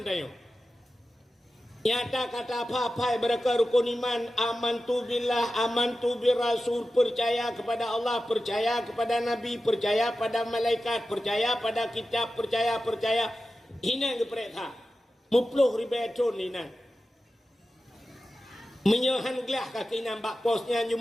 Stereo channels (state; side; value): normal; both; correlation 0.93